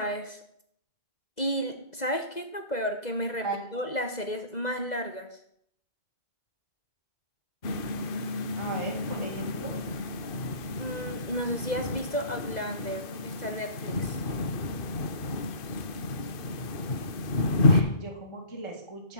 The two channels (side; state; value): right; late; 2.0 ms